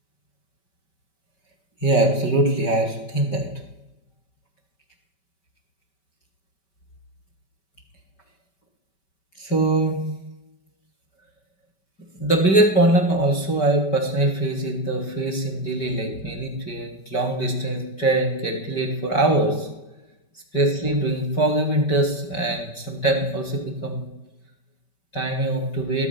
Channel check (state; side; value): late; right; 5.2 ms